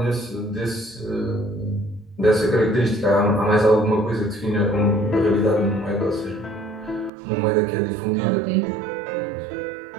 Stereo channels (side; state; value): left; drops out; at 7.1 s